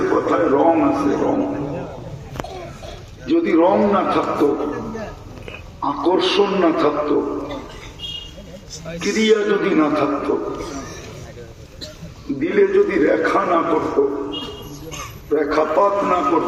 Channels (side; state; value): both; identical; correlation 1.00